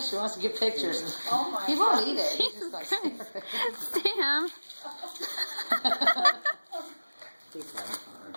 wants to give pictures. Oh my He won't eat it. He's just like, Sam.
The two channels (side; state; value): both; inverted; correlation -1.00